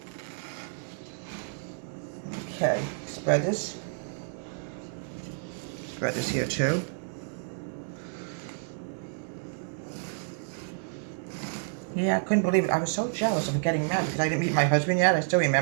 Okay, spread this. Spread this here too. Yeah, I couldn't believe it. I was so jealous of getting married because I didn't meet my husband yet. I still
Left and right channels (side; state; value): left; silent; digital silence